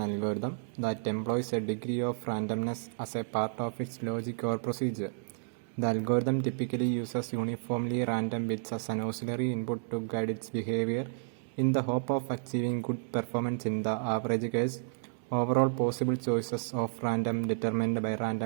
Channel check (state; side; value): silent; left; 57 dB below the other